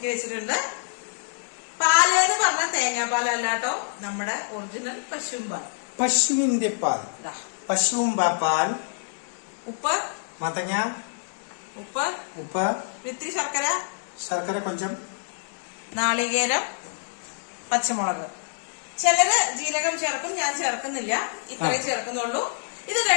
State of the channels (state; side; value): silent; right; digital silence